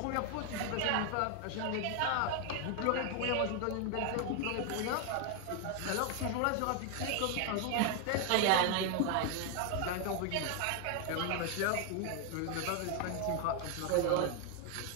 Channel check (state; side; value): different; both; correlation 0.01